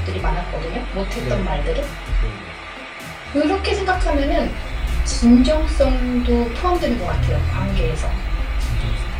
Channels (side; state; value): both; identical; correlation 1.00